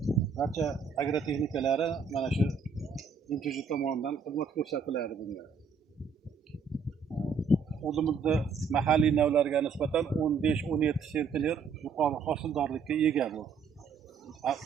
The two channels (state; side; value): quieter; left; 5.6 dB